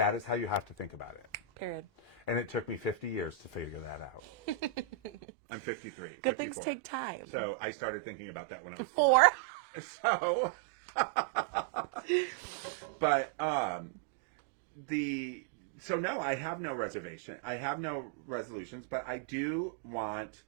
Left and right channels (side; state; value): left; drops out; at 5.1 s